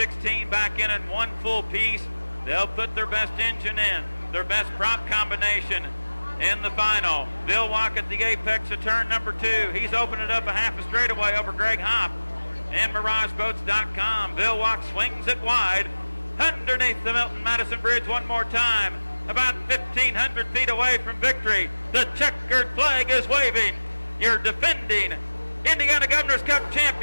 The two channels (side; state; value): both; inverted; correlation -1.00